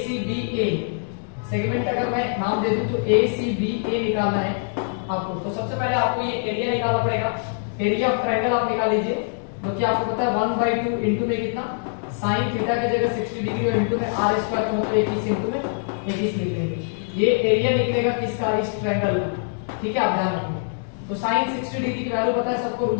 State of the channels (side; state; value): right; silent; digital silence